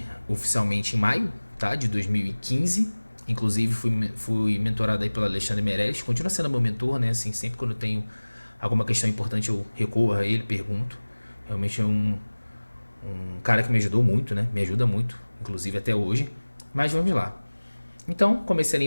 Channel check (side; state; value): both; inverted; correlation -1.00